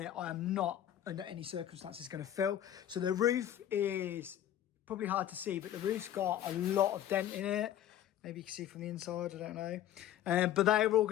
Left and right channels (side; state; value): right; quieter; 11.5 dB